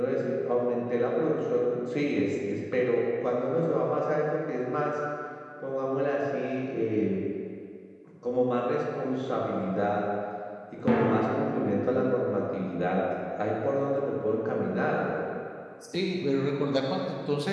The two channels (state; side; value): identical; both; correlation 1.00